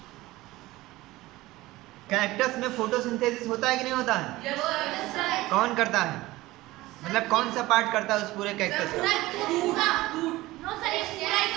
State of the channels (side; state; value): left; quieter; 18.5 dB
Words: कैक्टस में फोटोसिंथेसिस होता है कि नहीं होता है? Yes, sir. कौन करता है? मतलब कौन सा पार्ट करता है उस पूरे कैक्टस का?